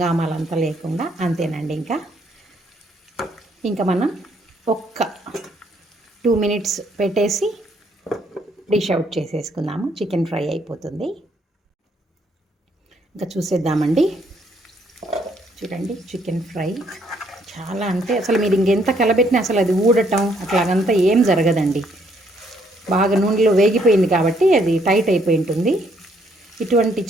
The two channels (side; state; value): both; normal; correlation 0.69